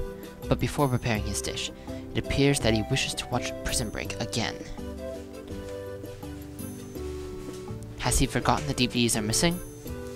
But before preparing his dish, it appears that he wishes to watch Prison Break again. Has he forgotten the DVDs are missing?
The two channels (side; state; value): both; identical; correlation 1.00